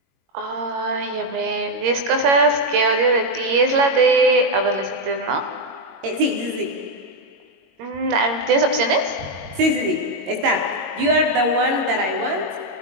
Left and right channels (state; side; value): late; left; 22 ms